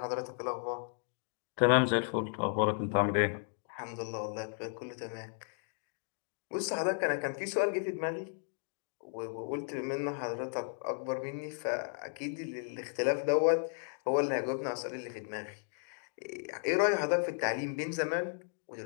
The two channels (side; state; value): right; silent; digital silence